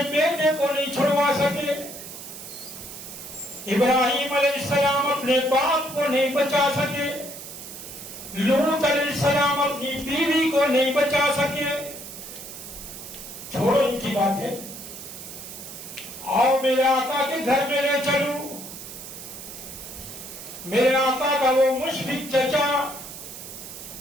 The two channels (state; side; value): noise; right; hiss, 12 dB below the sound